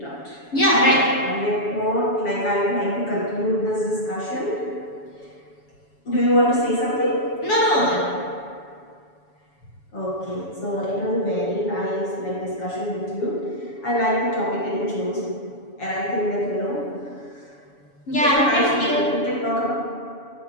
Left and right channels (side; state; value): right; late; 7.1 ms